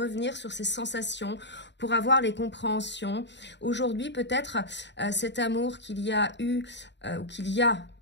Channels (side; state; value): right; late; 0.52 ms